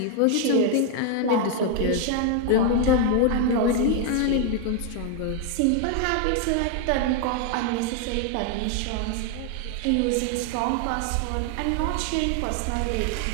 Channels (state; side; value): different; both; correlation 0.00